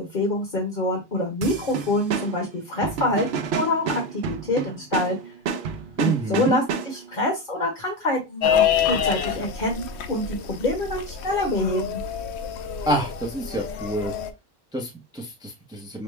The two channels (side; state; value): both; normal; correlation 0.16